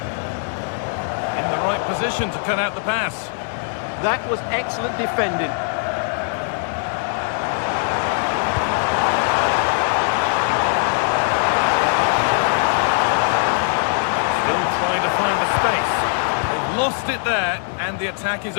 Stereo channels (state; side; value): silent; right; 65 dB below the other